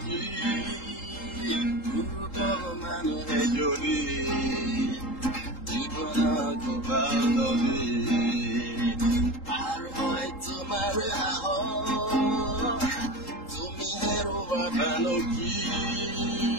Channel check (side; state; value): right; late; 3.8 ms